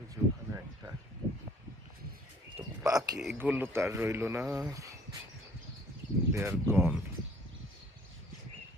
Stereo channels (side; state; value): both; normal; correlation 0.56